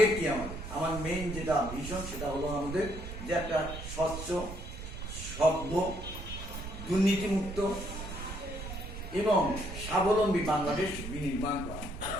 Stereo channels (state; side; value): noise; right; rumble, 9 dB below the sound